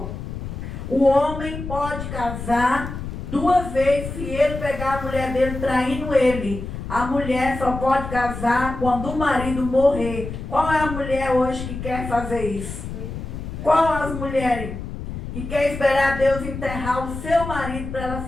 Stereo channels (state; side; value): noise; left; rumble, 8 dB below the sound